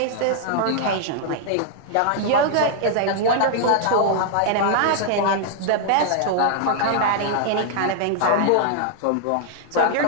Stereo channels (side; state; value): both; different; correlation -0.01